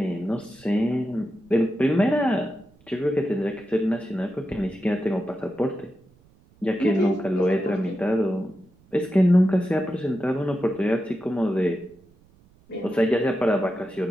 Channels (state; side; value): noise; right; rumble, 30 dB below the sound